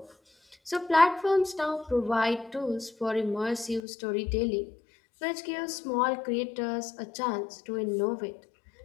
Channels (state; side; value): drops out; right; at 3.8 s